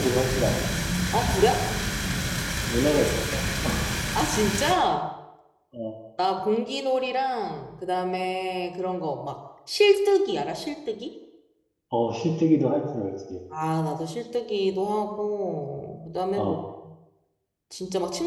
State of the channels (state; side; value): identical; both; correlation 1.00